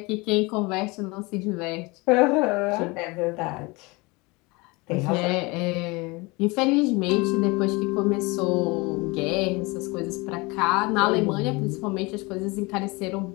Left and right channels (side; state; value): right; quieter; 25.4 dB